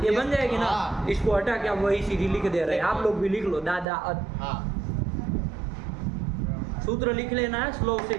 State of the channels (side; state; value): left; drops out; at 3.9 s